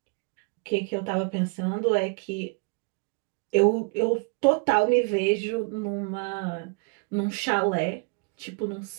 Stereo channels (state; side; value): quieter; left; 32.1 dB